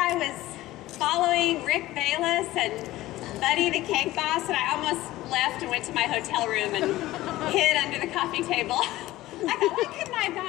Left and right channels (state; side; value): quieter; right; 16.7 dB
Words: was following Rick Bayless and Buddy the Cake Boss, and I almost left and went to my hotel room and hid under the coffee table. I thought, why couldn't I have